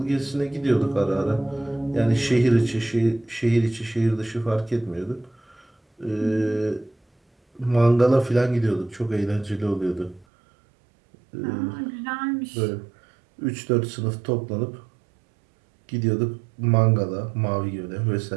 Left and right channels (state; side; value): drops out; left; at 10.2 s